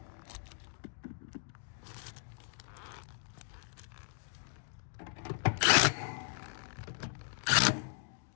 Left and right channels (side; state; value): right; silent; 53 dB below the other